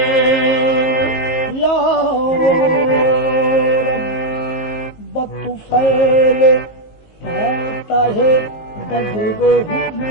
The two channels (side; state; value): right; late; 19 ms